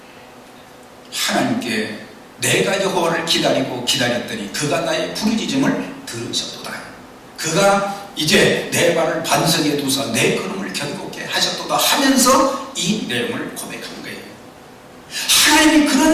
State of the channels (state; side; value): identical; both; correlation 1.00